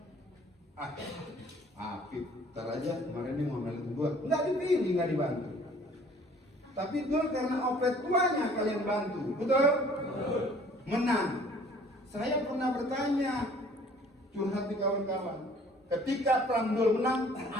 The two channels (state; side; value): normal; both; correlation 0.54